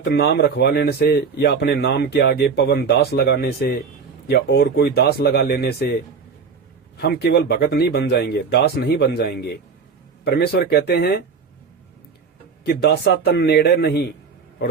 नाम रखवा लेने से, या अपने नाम के आगे पवन दास लगाने से, या और कोई दास लगा लेने से हम केवल भगत नहीं बन जाएंगे, दास नहीं बन जाएंगे। परमेश्वर कहते हैं कि दासा तन नेड़े नहीं,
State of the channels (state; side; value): quieter; left; 5.5 dB